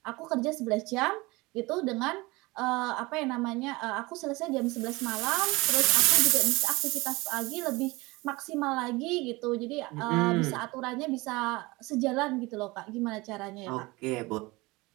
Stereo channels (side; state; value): left; quieter; 22.8 dB